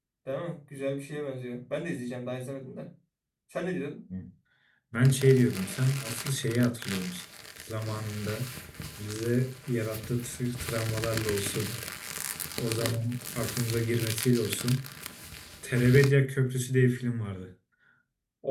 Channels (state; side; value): identical; both; correlation 1.00